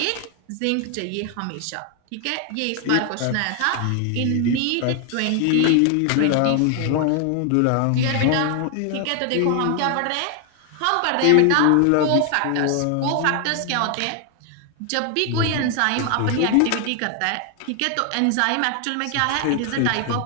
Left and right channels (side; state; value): both; different; correlation 0.00